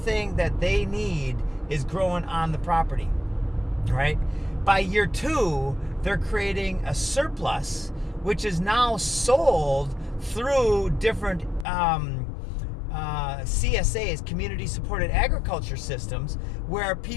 that they need is growing on the property, right? By year 2, they're creating a surplus, which is now sold through different CSAs, community supported agriculture systems, where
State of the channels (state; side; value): drops out; right; at 11.7 s